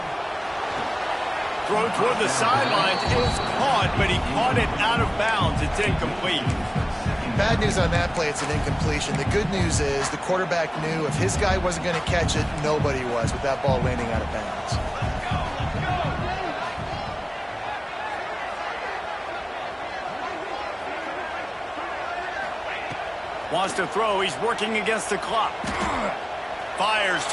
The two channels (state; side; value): identical; both; correlation 1.00